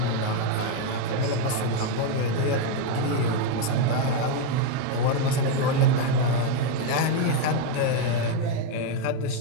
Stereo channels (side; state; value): both; different; correlation 0.02